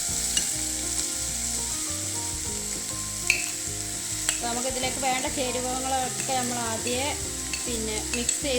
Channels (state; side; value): identical; both; correlation 1.00